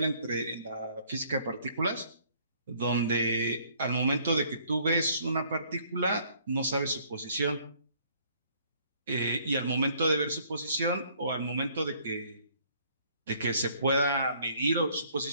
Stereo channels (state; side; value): inverted; both; correlation -0.62